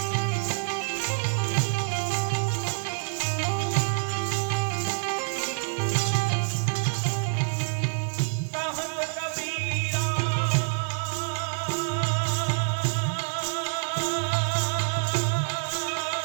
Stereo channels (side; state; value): left; silent; digital silence